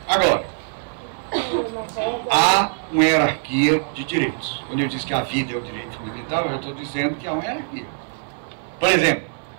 agora, há uma hierarquia de direitos. Quando eu disse que a vida é o direito fundamental, eu estou dizendo que há uma hierarquia. Por exemplo,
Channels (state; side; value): silent; left; 63 dB below the other